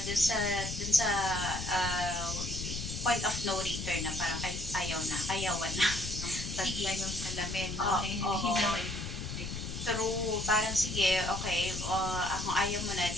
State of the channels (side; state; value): left; noise; rumble, 6 dB below the sound